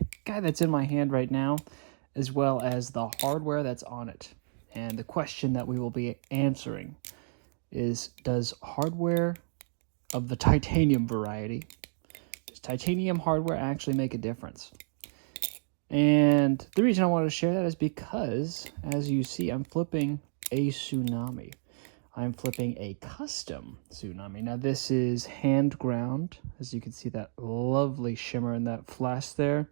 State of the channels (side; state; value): left; silent; digital silence